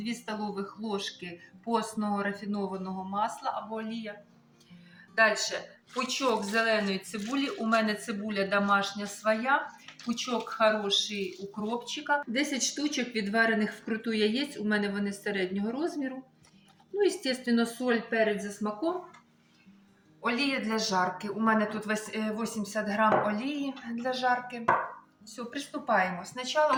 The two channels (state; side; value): identical; both; correlation 1.00